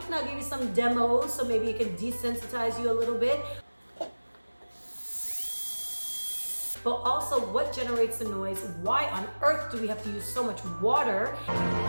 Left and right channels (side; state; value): both; inverted; correlation -1.00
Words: and I'll give you some demos so maybe it can desensitize you a little bit, but also what generates the noise, why on earth do we have to use so much water,